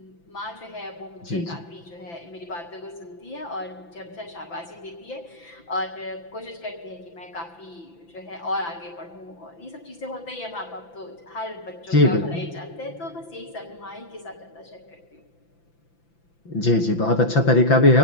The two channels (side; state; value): right; late; 5.9 ms